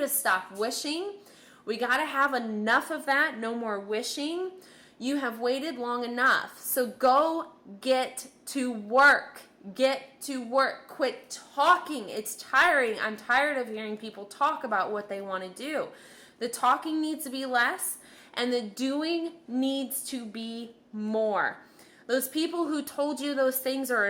stop wishing. We got to have enough of that. No more wishing. You have waited long enough. So go get to work. Get to work. Quit talking. It's tiring. I'm tired of hearing people talk about what they want to do. The talking needs to be less, and the doing needs to be more. Those people who told you those things are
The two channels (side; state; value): both; identical; correlation 1.00